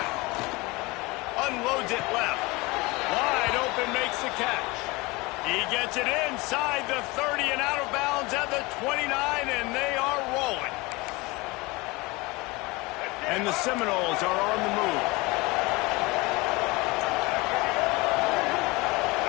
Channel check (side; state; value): right; quieter; 23.9 dB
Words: Unloads it left. Wide open, makes the catch. He gets it inside the 30 and out of bounds at the 29, and they are rolling. And the Seminoles are on the move.